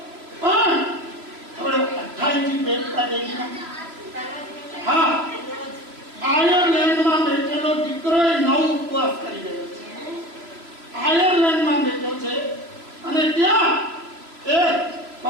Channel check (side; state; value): left; late; 3.0 ms